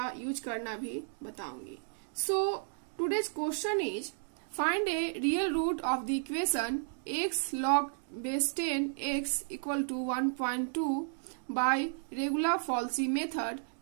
यूज करना भी बताऊंगी। सो today's question is, find a real root of the equation x log base 10 x equal to 1.2 by regular Falsy method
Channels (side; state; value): left; silent; digital silence